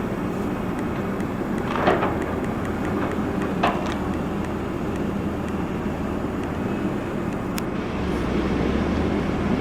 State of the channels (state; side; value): identical; both; correlation 1.00